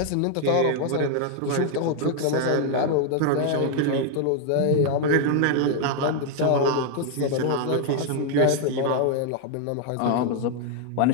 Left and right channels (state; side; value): different; both; correlation 0.00